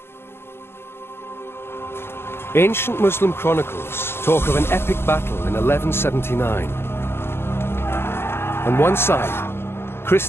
Ancient Muslim chronicles talk of an epic battle in 1179. On one side,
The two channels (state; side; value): late; right; 0.11 ms